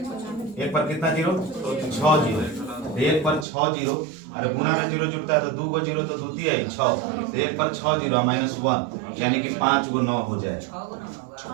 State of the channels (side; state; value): left; drops out; at 3.5 s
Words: 1 पर कितना 0? 6 0। 1 पर 6 0, अरे गुना में 0 जुड़ता है तो 2 गो 0 तो दूती है 6। तो 1 पर 6 0 -1 यानी कि 5 गो 9 हो जाए। 6